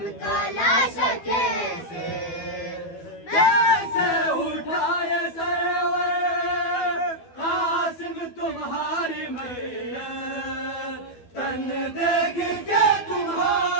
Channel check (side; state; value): right; late; 12 ms